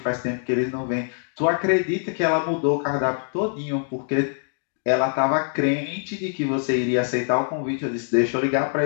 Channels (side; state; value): right; silent; 63 dB below the other